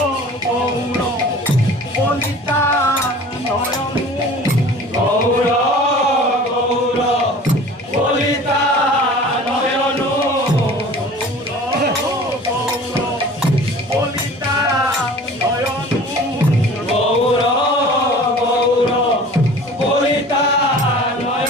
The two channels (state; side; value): normal; both; correlation 0.43